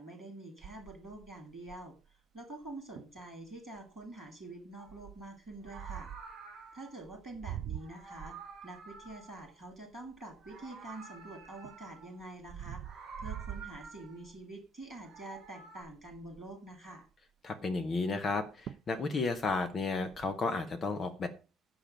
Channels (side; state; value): both; normal; correlation 0.66